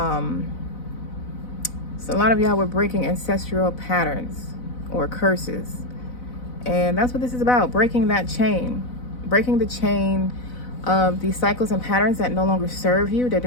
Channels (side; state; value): right; late; 4.0 ms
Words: so a lot of y'all were breaking ancestral patterns or curses, and that's what this is about: breaking that chain, breaking the chain of these cycles and patterns that no longer serve you, that